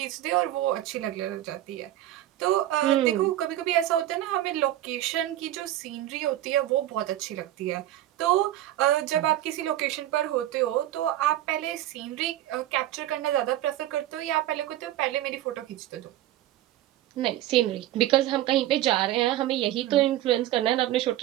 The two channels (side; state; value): left; quieter; 13.9 dB